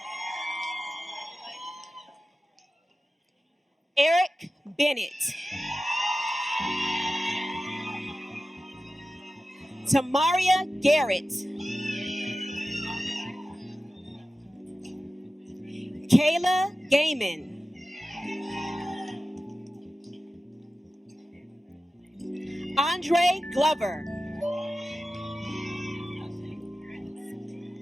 Eric Bennett, Tamaria Garrett, Kayla Gaiman, Andre Glover,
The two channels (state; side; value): normal; both; correlation 0.94